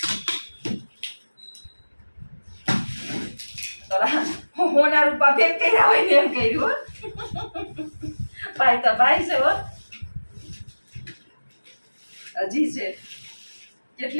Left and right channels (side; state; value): both; inverted; correlation -1.00